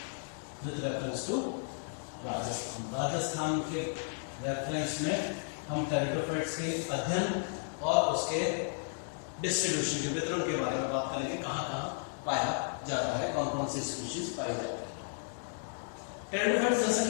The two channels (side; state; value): right; silent; digital silence